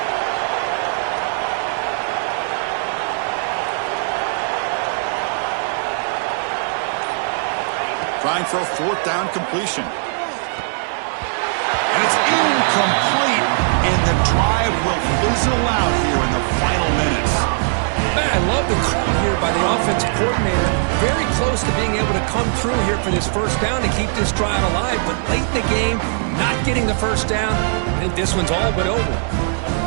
Trying for a fourth down completion. And it's incomplete. And the drive will fizzle out here in the final minutes. I love the call here by the offensive coordinator. Very close to being able to come through here for this first down to keep this drive alive. But late in the game, not getting the first down. I think this one's all but over.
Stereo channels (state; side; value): silent; left; digital silence